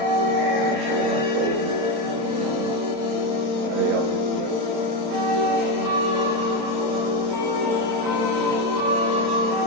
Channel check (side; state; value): left; late; 35 ms